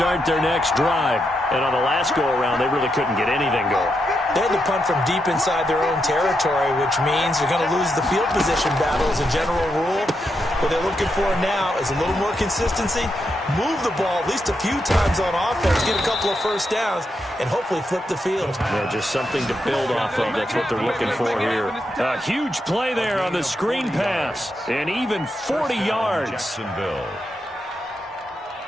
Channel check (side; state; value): both; normal; correlation 0.83